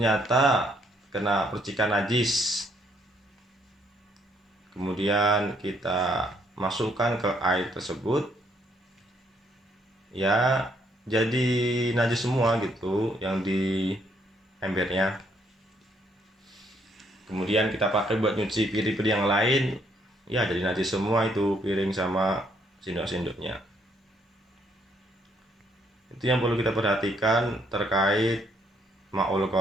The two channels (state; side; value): normal; both; correlation 0.70